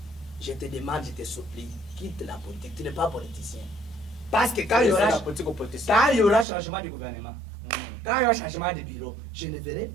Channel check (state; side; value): drops out; left; at 6.5 s